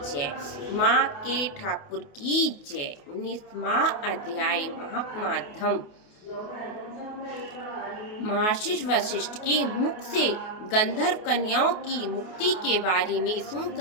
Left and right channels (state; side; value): late; right; 28 ms